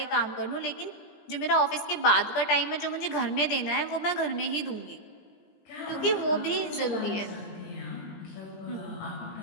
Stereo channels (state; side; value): late; right; 17 ms